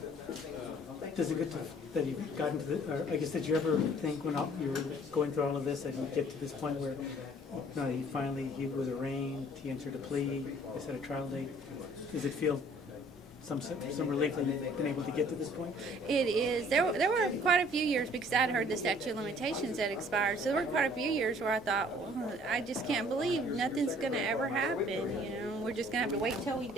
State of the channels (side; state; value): both; normal; correlation 0.56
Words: Does it get to that you've gotten to the, or I guess, did you ever think when you were going through all of this that you get to this point where he was arraigned, he entered a plea, they set a trial date? Does it feel some relief that you've been able to get to this point? It is. There were quite a few years, because I'd heard the statute of limitations had expired. So there were quite a few years where I thought, well, I just can't believe nothing's going to ever happen. You know, we're just going to have to wait till we